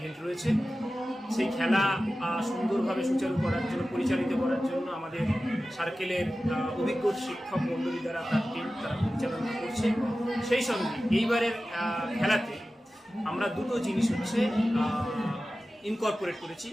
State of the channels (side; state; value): both; normal; correlation 0.95